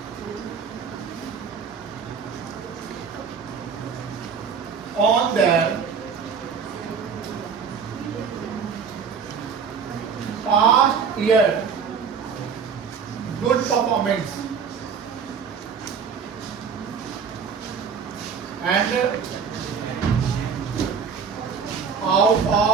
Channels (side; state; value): left; quieter; 6.3 dB